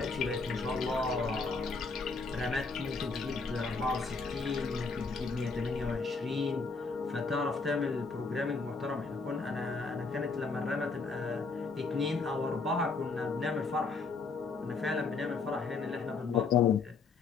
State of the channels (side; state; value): right; quieter; 4.3 dB